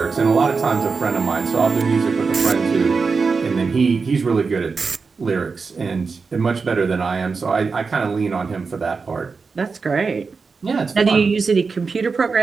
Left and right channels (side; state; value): left; quieter; 4.8 dB